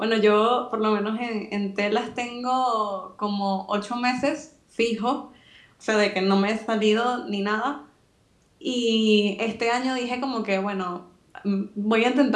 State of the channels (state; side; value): identical; both; correlation 1.00